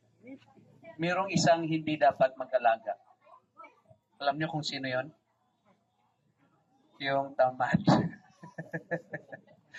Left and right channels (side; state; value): both; identical; correlation 1.00